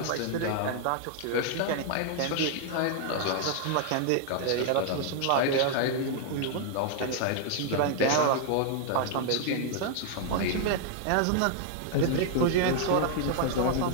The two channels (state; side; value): different; both; correlation 0.00